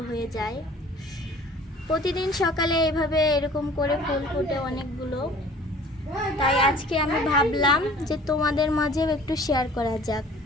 হয়ে যায়। প্রতিদিন সকালে এভাবে এরকম করে ফুল ফোটে অনেকগুলো। তাই আজকে আমি ভাবলাম যে তোমাদের মাঝেও একটু শেয়ার করা যাক।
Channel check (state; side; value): normal; both; correlation 0.49